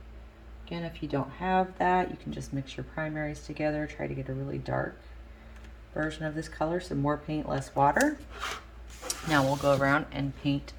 Again, if you don't have that, you can just mix your primaries together. Try to get a really dark version of this color, so more paint, less water. Now we'll go around and paint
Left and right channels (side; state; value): both; identical; correlation 1.00